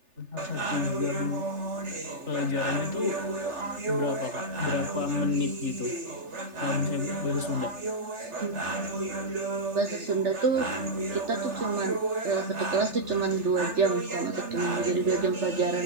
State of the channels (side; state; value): left; late; 3.4 ms